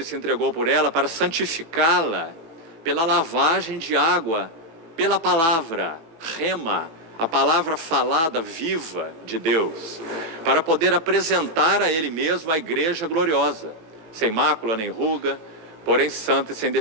e se entregou por ela para santificá-la pela lavagem de água, pela palavra, rema, a palavra falada, viva de Deus, para poder apresentar a Ele mesmo a igreja gloriosa, sem mácula nem ruga, porém santa e sem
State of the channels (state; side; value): late; left; 18 ms